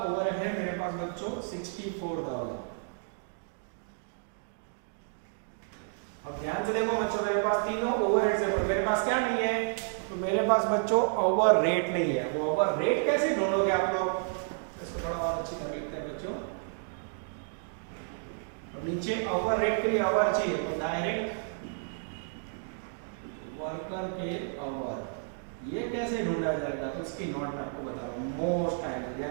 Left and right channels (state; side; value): silent; left; digital silence